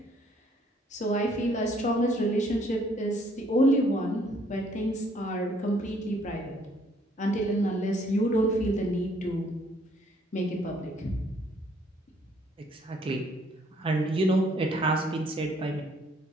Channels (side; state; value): both; normal; correlation 0.64